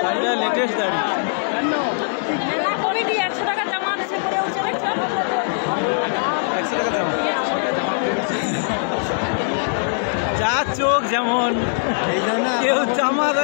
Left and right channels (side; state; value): right; silent; digital silence